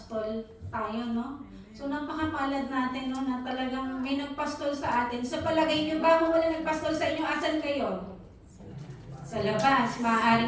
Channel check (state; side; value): identical; both; correlation 1.00